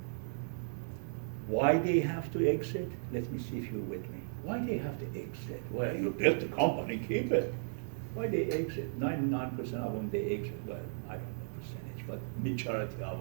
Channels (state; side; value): silent; left; digital silence